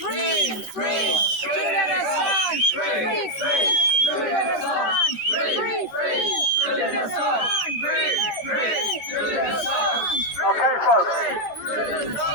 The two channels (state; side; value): late; right; 14 ms